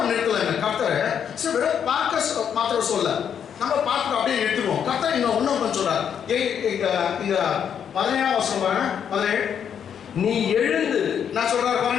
நிறுத்தலைங்க கர்த்தர். சரி, வெறும் பார்க்க மாத்திரம் சொல்ல, நம்ம பார்த்துட்டு அப்படியே நிறுத்துவோம். கர்த்தர் இன்னும் கொஞ்சம் சொல்றாரு. இங்க 17 வருஷம் பாருங்க, 17. நீ எழுந்து, நான் சொல்றாரு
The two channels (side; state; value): right; quieter; 8.2 dB